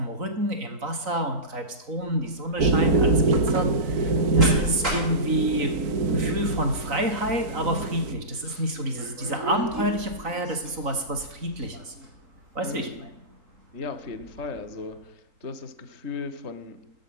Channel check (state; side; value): late; left; 4.0 ms